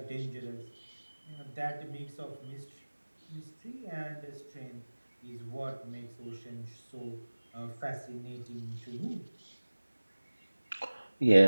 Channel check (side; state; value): both; inverted; correlation -1.00